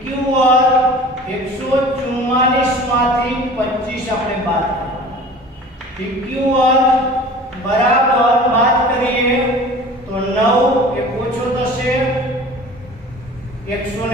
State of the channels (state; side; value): normal; both; correlation 0.42